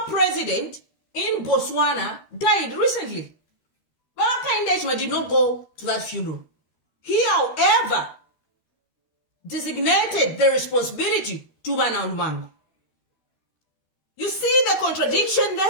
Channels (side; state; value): right; late; 13 ms